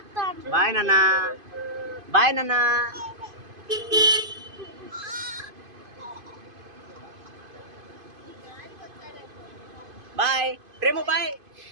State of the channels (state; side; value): late; left; 2.5 ms